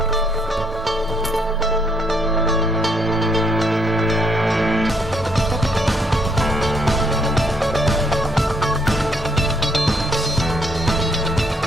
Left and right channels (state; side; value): normal; both; correlation 0.70